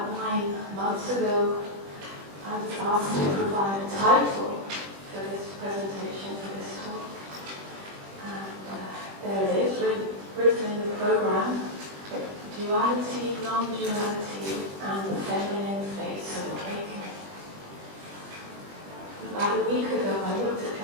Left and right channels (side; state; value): left; late; 20 ms